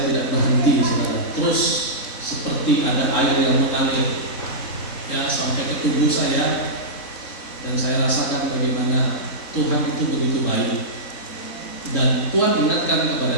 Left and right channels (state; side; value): late; right; 3.9 ms